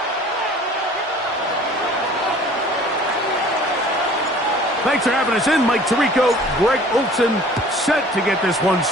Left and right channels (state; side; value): normal; both; correlation 0.49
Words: Thanks for having us in. Mike Tirico, Greg Olsen, set to get this one